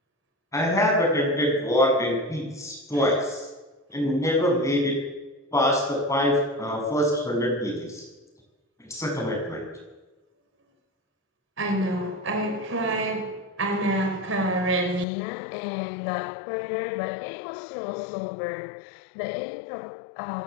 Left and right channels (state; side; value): drops out; right; at 15.1 s